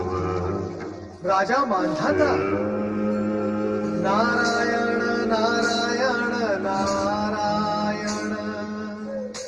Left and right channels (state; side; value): identical; both; correlation 1.00